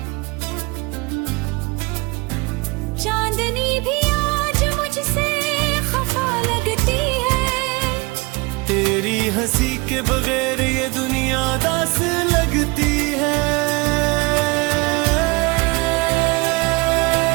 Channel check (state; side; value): quieter; left; 25.8 dB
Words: चांदनी भी आज मुझसे खफा लगती है। तेरी हंसी के बगैर ये दुनिया दास लगती है।